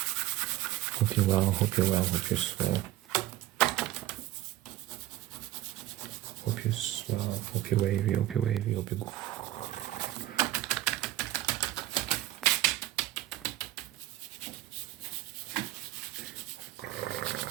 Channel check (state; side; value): quieter; left; 15.1 dB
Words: Hope you're well. Hope you're well. Hope you're swell. Hope you're swell. Hope you're wavy. Hope you're...